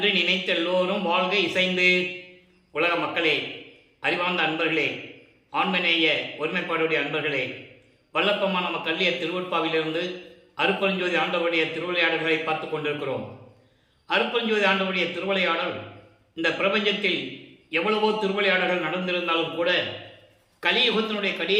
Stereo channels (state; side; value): identical; both; correlation 1.00